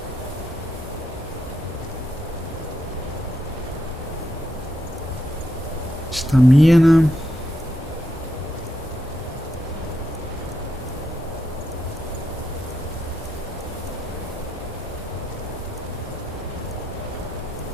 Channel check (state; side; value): normal; both; correlation 0.82